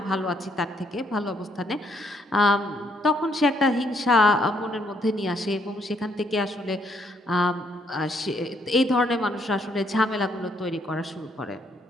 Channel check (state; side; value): normal; both; correlation 0.71